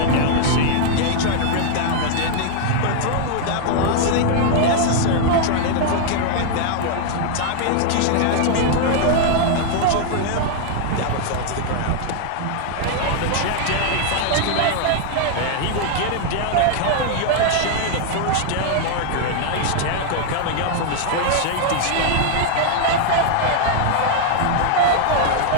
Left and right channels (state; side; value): different; both; correlation 0.00